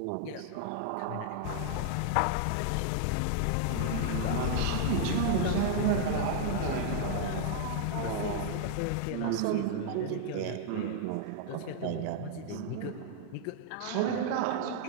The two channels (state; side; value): different; both; correlation -0.01